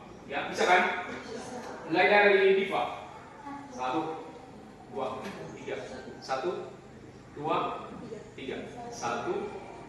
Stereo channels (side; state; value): both; identical; correlation 1.00